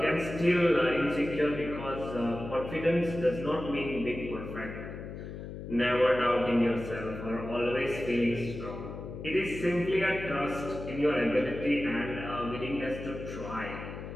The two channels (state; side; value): noise; left; hum, 9 dB below the sound